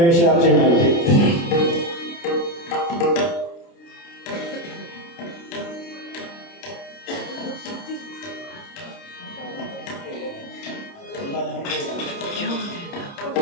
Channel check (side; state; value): right; late; 29 ms